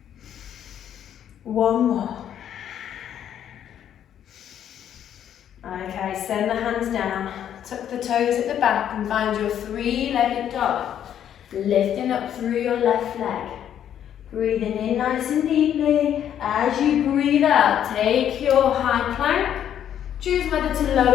One more. Okay, send the hands down. Tuck the toes at the back and find your three-legged dog. Lifting up through your left leg. Breathing in nice and deeply. As you breathe out, take your high plank. Choose whether to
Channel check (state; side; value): quieter; right; 9.9 dB